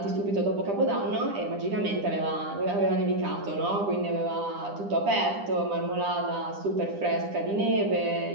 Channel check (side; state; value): left; late; 10 ms